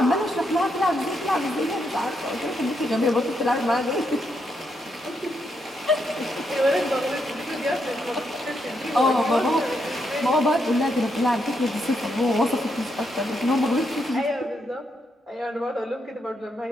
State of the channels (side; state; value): both; normal; correlation 0.80